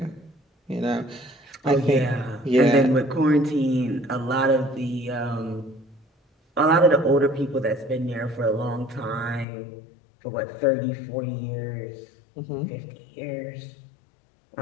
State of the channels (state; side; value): drops out; right; at 9.5 s